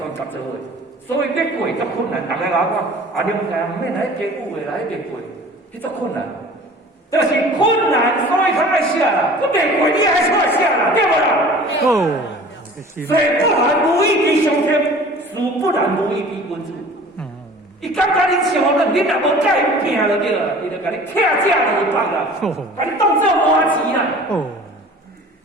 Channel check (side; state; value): both; normal; correlation 0.45